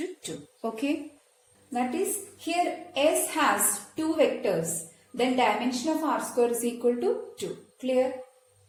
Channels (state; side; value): identical; both; correlation 1.00